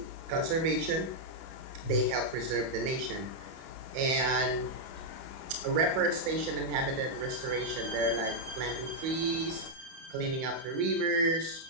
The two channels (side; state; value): left; late; 31 ms